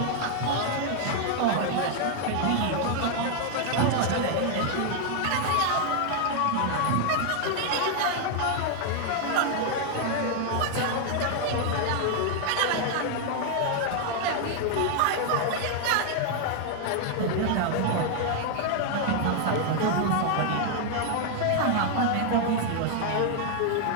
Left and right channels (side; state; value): both; different; correlation 0.00